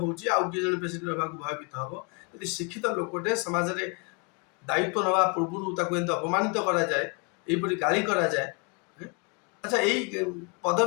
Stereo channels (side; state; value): right; quieter; 33.3 dB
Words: आउ कि जने प्रेसिडेंट होबा भयभीत हब यदि शिक्षित लोकटे समाज रे दायित्व नवा पूर्व ताको एंत अपमानित करा जाए एपरि गाली करा जाए। अच्छा यही